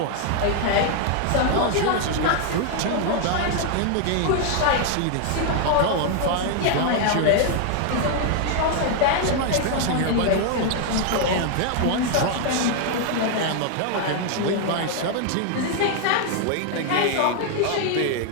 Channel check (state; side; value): different; both; correlation 0.00